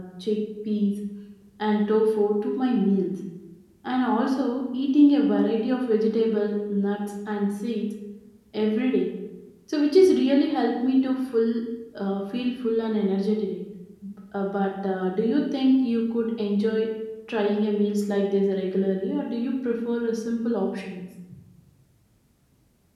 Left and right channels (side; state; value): both; identical; correlation 1.00